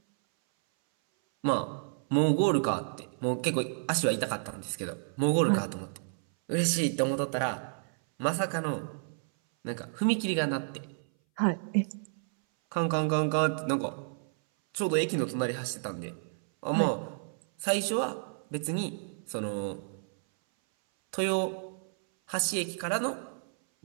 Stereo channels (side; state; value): left; silent; 57 dB below the other